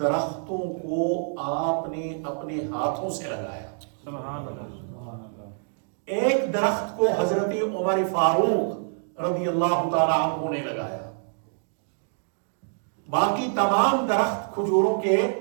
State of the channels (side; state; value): left; silent; digital silence